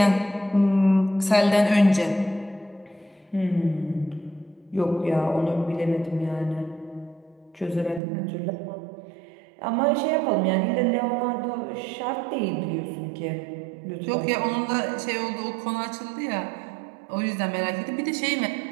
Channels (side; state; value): left; drops out; at 8.0 s